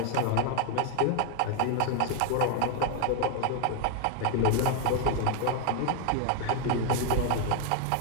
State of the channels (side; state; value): both; different; correlation 0.00